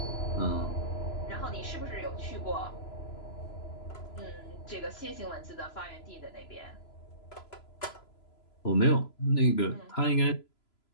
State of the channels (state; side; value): late; right; 3.0 ms